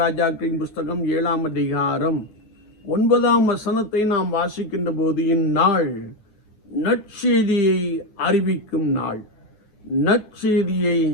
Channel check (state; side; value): late; right; 10 ms